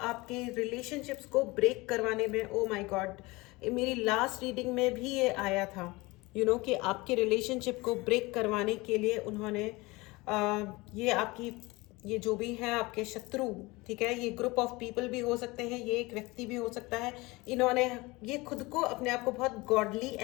रिलेशनशिप्स को ब्रेक करवाने में। ओ माय गॉड, मेरी लास्ट रीडिंग में भी ये आया था कि आपके रिलेशनशिप को ब्रेक करवाने के लिए उन्होंने ये आपकी, ये जो भी है आपके शत्रु, ठीक है, ये ग्रुप ऑफ पीपल भी हो सकते हैं, ये एक व्यक्ति भी हो सकता है। इन्होंने ये खुद को, अपने आप को बहुत गॉडली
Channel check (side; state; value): right; quieter; 22.8 dB